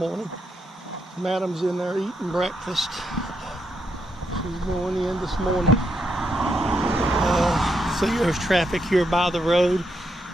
Madam's in there eating breakfast. She's going in this morning. See, there's traffic here by the road.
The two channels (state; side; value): normal; both; correlation 0.80